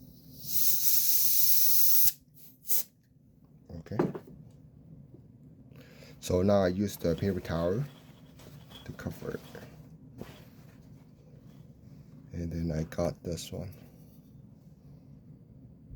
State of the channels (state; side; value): identical; both; correlation 1.00